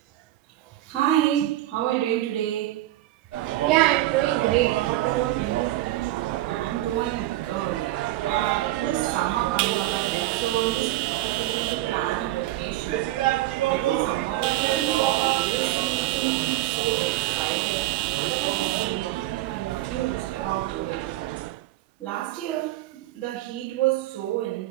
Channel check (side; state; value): left; quieter; 15.7 dB